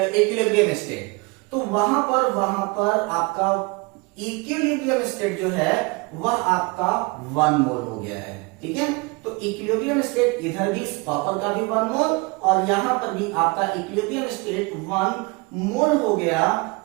स्टेट, तो वहां पर आपका इक्विलिब्रियम स्टेट जो है वह आपका 1 मोल हो गया है। ठीक है, तो इक्विलिब्रियम स्टेट इधर भी कॉपर का भी 1 मोल और यहां पर भी आपका इक्विलिब्रियम स्टेट 1 मोल हो गया।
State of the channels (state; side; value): quieter; left; 27.4 dB